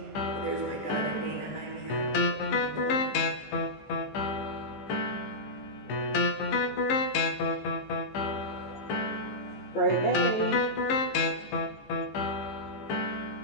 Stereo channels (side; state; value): right; late; 14 ms